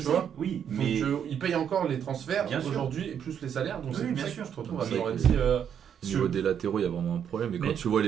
sais, vois. oui, Donc mais ils payent encore les transferts Bien sûr. aujourd'hui et plus les salaires, donc Oui, c'est pour bien ça sûr. que tu te retrouves Donc, à c'est- Florenzi. Au niveau des latéraux, il y a vraiment un problème. Et quand Mais- tu vois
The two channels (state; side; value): quieter; left; 8.5 dB